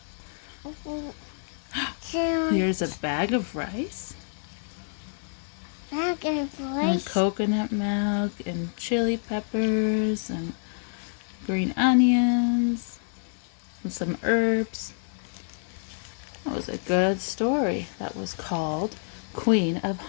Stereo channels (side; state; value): right; silent; digital silence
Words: Jam. Here's a bag of rice. Bag of And rice. coconut milk and chili peppers and green onions and some herbs. That was a good story. That was called Queen of